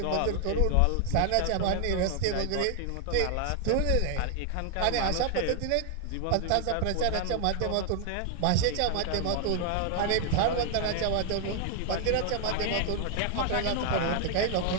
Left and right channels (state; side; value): different; both; correlation 0.00